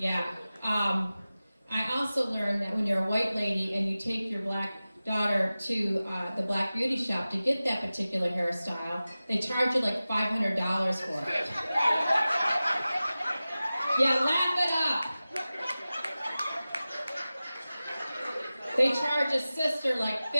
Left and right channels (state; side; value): inverted; both; correlation -0.96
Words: I also learned that when you're a white lady and you take your black daughter to the black beauty shop to get that particular hairstyle, they charge you like $500 for it. Yeah, laugh it up. They charge a sister like